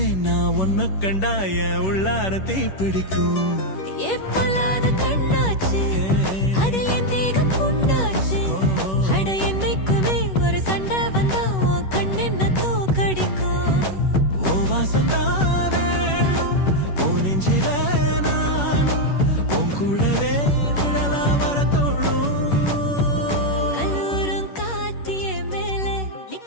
நான் உன்னை கண்டாய உள்ளார தீ பிடிக்கும். எப்பொல்லாத கண்ணாச்சு, அதில் என் தேகம் புண்ணாச்சு. அட என்னைக்குமே ஒரு சண்டை வந்தா உன் கண் என்ன தோக்கடிக்கும். ஓ வாசந்தானே உன் நெஞ்சில நானும் உன் கூட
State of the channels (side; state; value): right; late; 10 ms